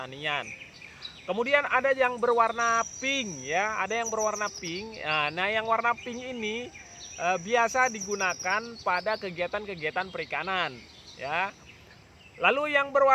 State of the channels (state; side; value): identical; both; correlation 1.00